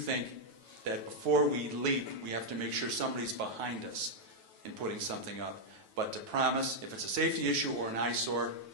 that before we leap, we have to make sure somebody's behind us in putting something up. But to promise, if it's a safety issue or an eyesore,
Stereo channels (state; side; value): late; left; 9.3 ms